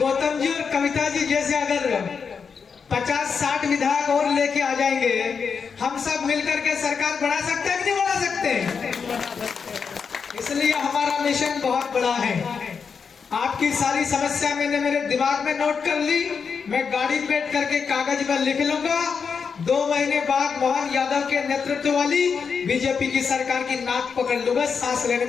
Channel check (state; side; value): quieter; right; 5.9 dB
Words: जी और कविता जी जैसे अगर 50-60 विधायक और लेके आ जाएंगे, हम सब मिलकर के सरकार बढ़ा सकते हैं कि नहीं बढ़ा सकते? इसलिए हमारा मिशन बहुत बड़ा है। आपकी सारी समस्या मैंने मेरे दिमाग में नोट कर ली, मैं गाड़ी बैठ करके कागज में लिख लूंगा। 2 महीने बाद मोहन यादव के नेतृत्व वाली बीजेपी की सरकार की नाक पकड़ लूंगा। सांस लेने